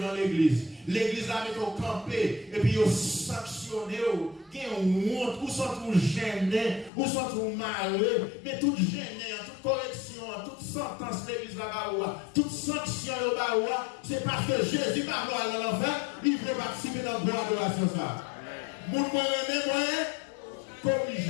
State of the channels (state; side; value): drops out; right; at 6.9 s